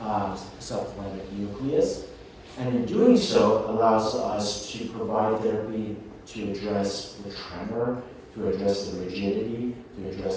subthalamic nucleus, and in doing so allows us to provide therapy to address the tremor, to address the rigidity, to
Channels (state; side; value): identical; both; correlation 1.00